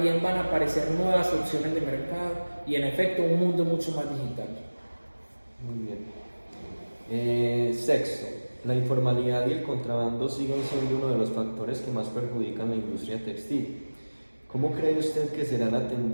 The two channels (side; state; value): both; inverted; correlation -1.00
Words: van a aparecer nuevas opciones de mercado y en efecto un mundo mucho más digital. Muy bien. Sexto, la informalidad y el contrabando siguen siendo uno de los factores que más perjudican la industria textil. ¿Cómo cree usted que será la